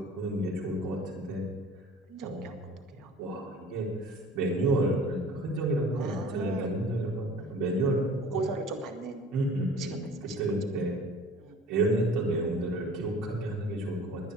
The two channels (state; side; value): normal; both; correlation 0.46